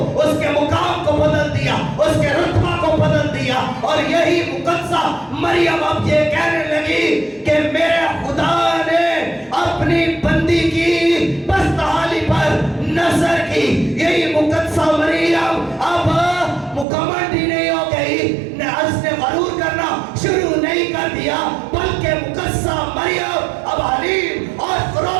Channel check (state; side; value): drops out; left; at 16.9 s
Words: उसके मुकाम को बदल दिया, उसके रुतबा को बदल दिया। और यही मुक़द्दसा मरियम अब ये कहने लगी कि मेरे खुदा ने अपनी बंदी की बदहाली पर नजर की। यही मुक़द्दसा मरियम अब मुकम्मल नहीं हो गई, उसने गरूर करना शुरू नहीं कर दिया, बल्कि मुक़द्दसा मरियम अब हलीम और